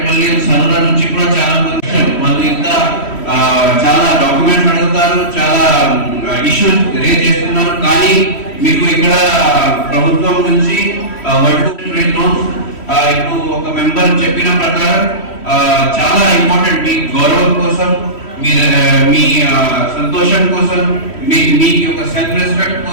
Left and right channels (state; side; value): late; right; 3.1 ms